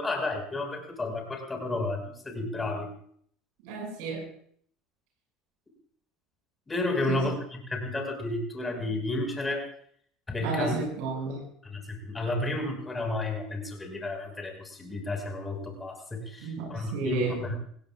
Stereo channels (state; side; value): normal; both; correlation 0.52